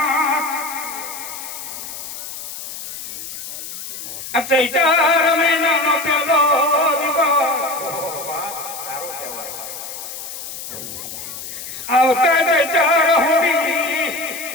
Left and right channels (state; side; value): noise; left; hiss, 9 dB below the sound